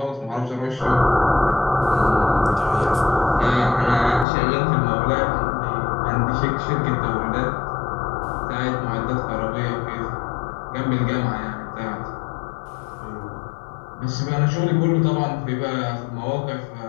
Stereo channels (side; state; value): right; drops out; at 4.2 s